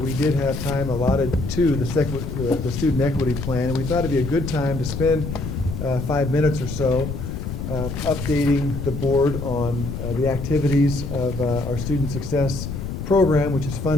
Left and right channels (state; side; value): noise; left; rumble, 5 dB below the sound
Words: did have time allotted to the student equity plan, and we thought it'd be a good time to spend 5 minutes or so updating the board on the activities of our student success program, which is